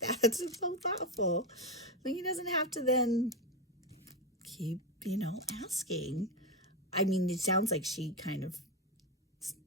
It's so thoughtful. He doesn't have to then keep, asking. I mean, it sounds like she kind of,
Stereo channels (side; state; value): both; normal; correlation 0.11